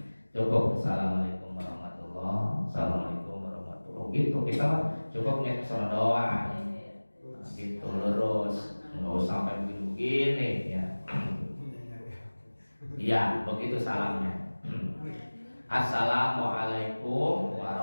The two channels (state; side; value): inverted; both; correlation -1.00